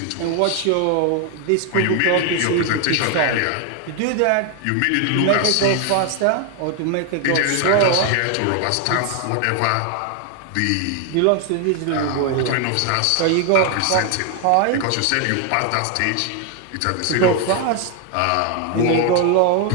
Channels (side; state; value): both; different; correlation 0.01